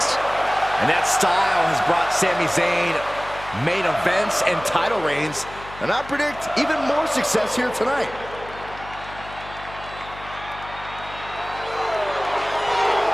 And that style has brought Sami Zayn main events and title reigns, and I predict even more success here tonight.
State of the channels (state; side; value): noise; left; hum, 16 dB below the sound